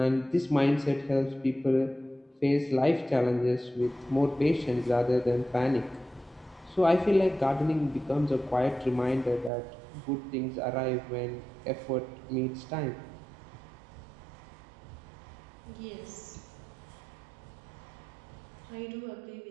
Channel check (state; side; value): drops out; left; at 9.5 s